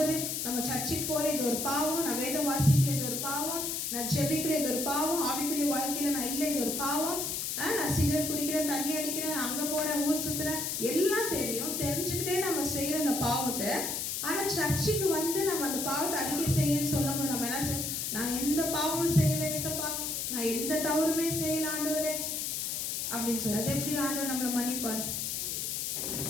நம்ம சர்ச்சுக்கு போல இது ஒரு பாவம், நான் வேதம் வாசிக்கல இது ஒரு பாவம், நான் ஜெபிக்கல இது ஒரு பாவம், ஆவிக்குரிய வாழ்க்கையில நான் இல்லை இது ஒரு பாவம், நான் சிகரெட் குடிக்கிறேன், தண்ணி அடிக்கிறேன், நான் அங்க போறேன், ஊர் சுத்துறேன், எல்லாம் தெரியும். தெரிஞ்சுக்கிட்டே நம்ம செய்யற அந்த பாவத்தை, ஆனா சர்ச்சுக்கு வந்து நம்ம அந்த பாவத்தை அறிக்கை செய்யன்னு சொல்லும் போது நம்ம என்ன செய்ய, நான் எந்த பாவமும் செய்யல ஏசப்பா, நான் எந்த தவறுமே செய்யல ஆண்டவரே அப்படின்னு சொல்லி, அது எப்படி ஆண்டவர் நம்மளை மன்னிப்பார்?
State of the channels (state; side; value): noise; left; hiss, 2 dB below the sound